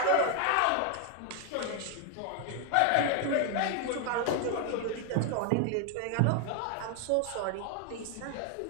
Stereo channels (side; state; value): both; different; correlation 0.01